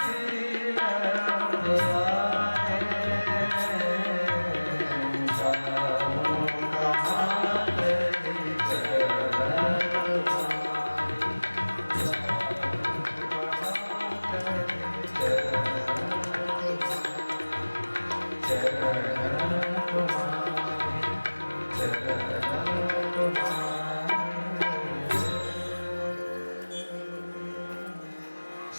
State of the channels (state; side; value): inverted; both; correlation -1.00